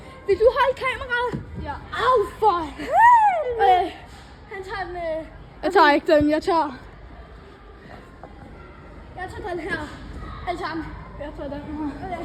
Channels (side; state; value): both; identical; correlation 1.00